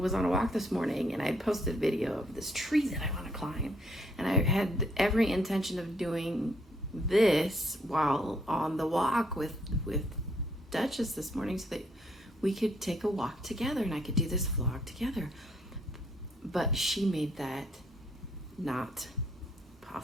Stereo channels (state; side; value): normal; both; correlation 0.69